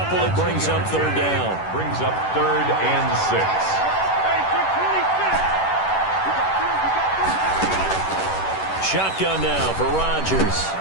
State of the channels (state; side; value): late; right; 10 ms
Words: It brings up 3rd down. Brings up 3rd and 6. Shotgun now for Rodgers.